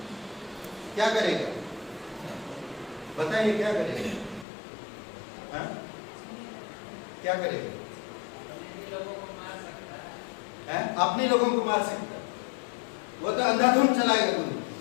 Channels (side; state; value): right; drops out; at 4.5 s